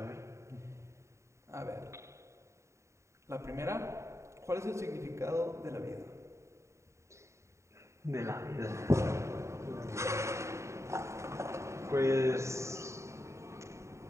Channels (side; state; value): left; late; 0.14 ms